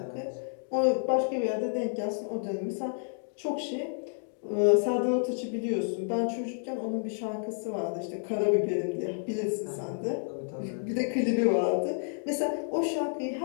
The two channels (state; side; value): silent; right; digital silence